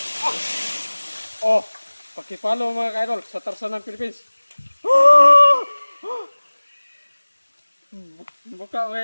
Oh, paki-follow mga kaidol sa Tarzan ng Philippines. Buka mga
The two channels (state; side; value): inverted; both; correlation -1.00